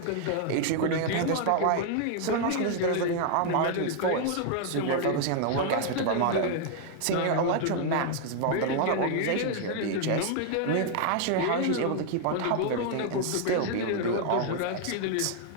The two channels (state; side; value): different; both; correlation 0.00